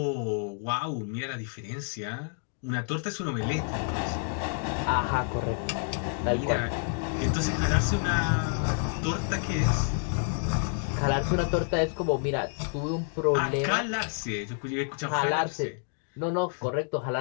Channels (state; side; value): silent; right; 59 dB below the other